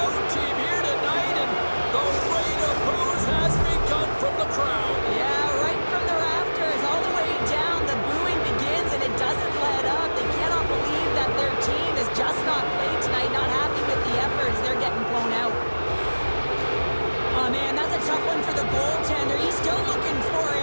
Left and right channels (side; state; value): both; inverted; correlation -1.00